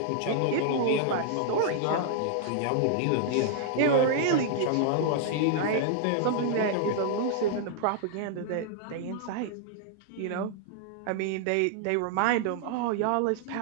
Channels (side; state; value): both; different; correlation -0.01